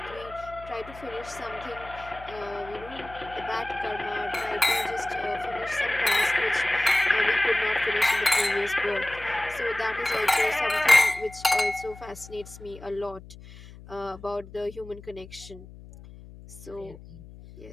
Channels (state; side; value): noise; left; hum, 17 dB below the sound